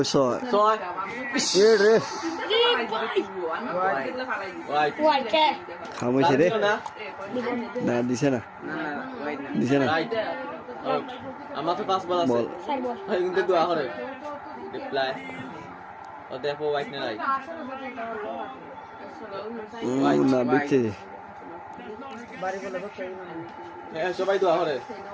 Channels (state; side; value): identical; both; correlation 1.00